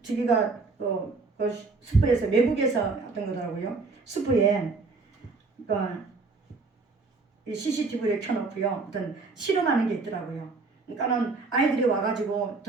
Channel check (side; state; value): left; quieter; 4.0 dB